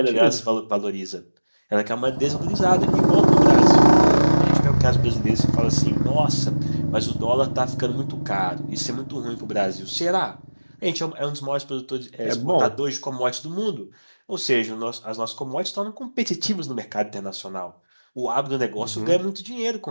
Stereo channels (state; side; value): inverted; both; correlation -1.00